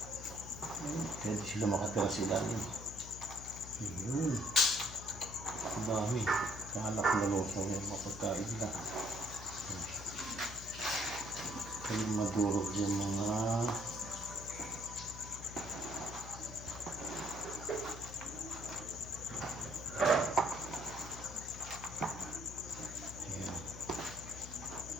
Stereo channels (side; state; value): left; noise; hum, 11 dB below the sound